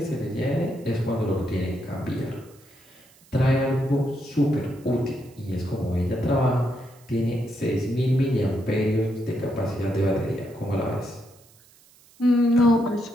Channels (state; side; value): noise; right; hiss, 28 dB below the sound